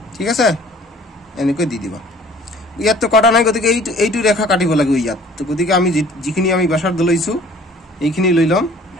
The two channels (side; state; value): both; normal; correlation 0.52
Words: ঠিক আছে এনেকৈ দি দিবা ইয়াত তো কটা নাই গতিকে এইটো ৰেখা কাটিব লাগিব ইয়াত তো গতিকে আমি যিখিনি আমি ব্যাসাৰ্ধ লৈছো এইখিনি লৈ লম